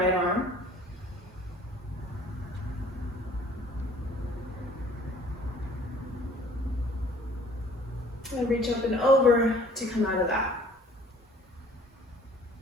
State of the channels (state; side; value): normal; both; correlation 0.54